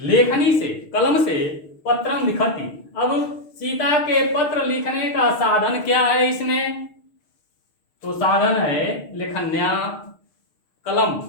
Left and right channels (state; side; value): late; right; 6.5 ms